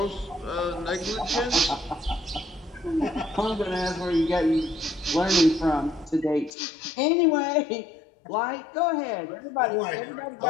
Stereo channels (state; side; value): drops out; right; at 6.5 s